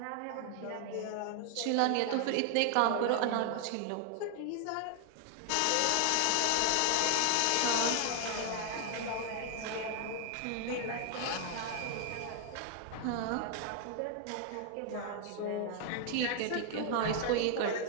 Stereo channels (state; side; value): different; both; correlation 0.00